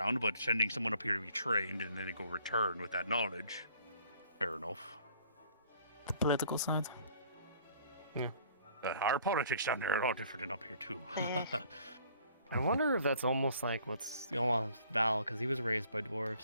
but sending someone up here to be trained and then they go return with that knowledge, fair enough. The political side. Our politics down there are a lot different than up here too. I wonder if that's almost like what's going on with Val, because he was raised by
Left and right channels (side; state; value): both; inverted; correlation -0.58